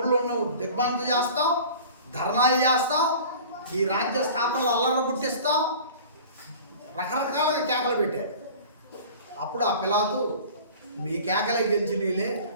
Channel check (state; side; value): inverted; both; correlation -0.42